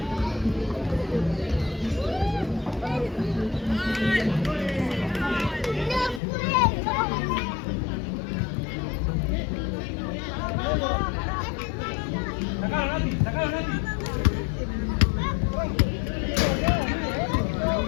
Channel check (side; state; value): right; drops out; at 6.2 s